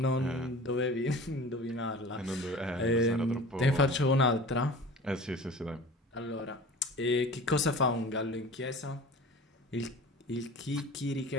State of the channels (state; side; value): normal; both; correlation 0.40